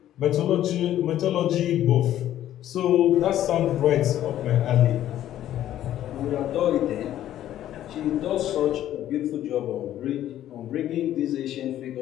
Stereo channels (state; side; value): quieter; right; 12.2 dB